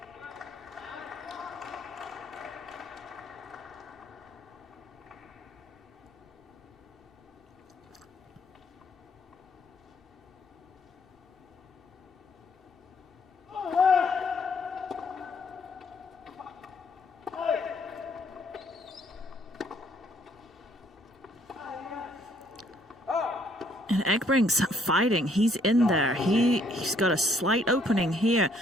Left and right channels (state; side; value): normal; both; correlation 0.66